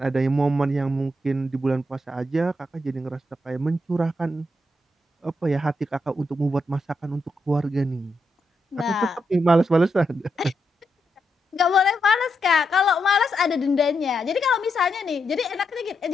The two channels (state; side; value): normal; both; correlation 0.82